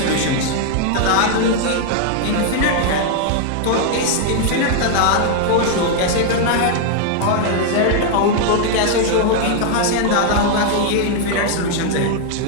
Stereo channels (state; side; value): different; both; correlation 0.00